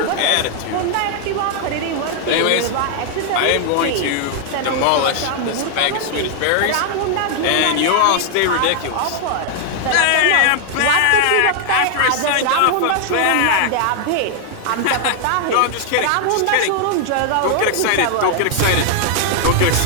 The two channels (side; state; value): both; different; correlation 0.00